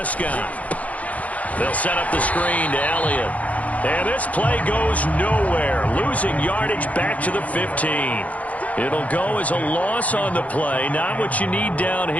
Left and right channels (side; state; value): right; late; 0.070 ms